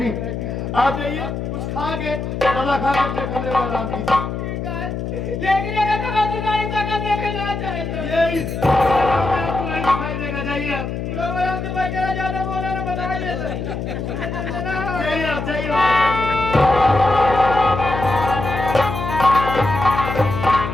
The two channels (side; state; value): left; noise; hum, 4 dB below the sound